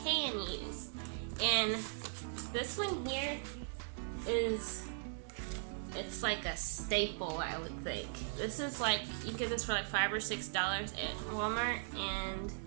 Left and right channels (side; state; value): left; silent; digital silence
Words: can use. And this one here it's like a staple, I would think. This is like, you get this for like $5 or $6 at Walmart, and